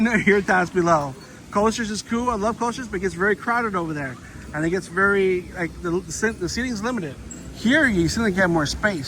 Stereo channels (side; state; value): both; identical; correlation 1.00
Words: your thoughts below. Coasters is cool. I love coasters, but it gets very crowded over there. And it gets very, like, the seating's limited. Here, you simply get more